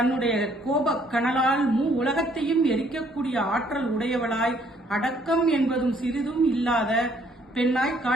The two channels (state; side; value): normal; both; correlation 0.65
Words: கோப கனலால் உலகத்தையும் எரிக்கக்கூடிய ஆற்றல் உடையவளாய் அடக்கம் என்பதும் சிறிதும் இல்லாத பெண்ணாய்